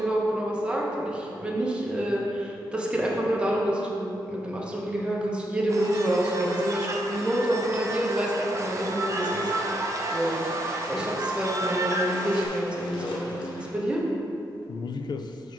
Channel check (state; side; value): normal; both; correlation 0.79